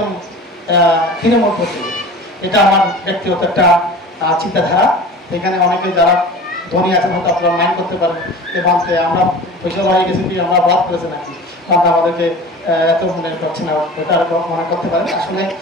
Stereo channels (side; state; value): both; normal; correlation 0.38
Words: তৃণমূল করতে, এটা আমার ব্যক্তিগত একটা চিন্তাধারা। এখানে অনেকে যারা ধনী আছেন হয়তো আপনারা মাইন্ড করতে পারেন এবং আমরা পয়সা হয়ে গেছি কি আমরা অপরাধ করেছে নাকি, কারণ আমাদেরকে এত মনে করছে না, এটা মনে করতে পারেন। আসলে